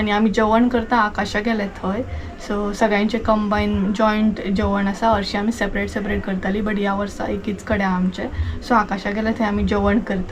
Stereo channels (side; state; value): both; identical; correlation 1.00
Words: आमी जेवण करता आकाशा गेले थंय सो सगळ्यांचें कंबायन जॉयंट जेवण आसा हरशीं आमी सेपरेट सेपरेट करतालीं बट ह्या वर्सा एकीच कडेन आमचें सो आकाशा गेले थंय आमी जेवण